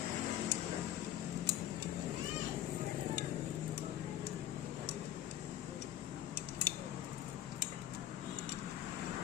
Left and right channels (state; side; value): quieter; right; 12.4 dB